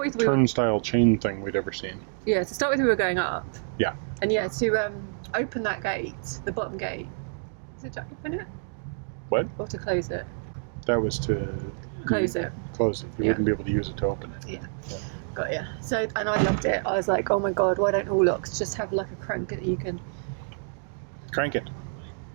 with, turnstile chain thing we'd ever seen. Yeah, to start with, we were going up. Yeah. And yeah, to open that gate, the bottom gate, is it to open it? What? Or to close it? That was to... Close it. Close it. You wouldn't be able to use it to open it. Yeah. Got ya. So, and I loved it. I was like, oh my god, why don't all locks just have like a crank that you can... Crank it.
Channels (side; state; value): left; silent; digital silence